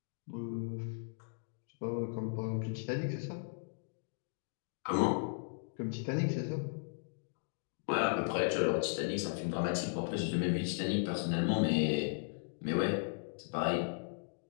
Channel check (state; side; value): silent; right; digital silence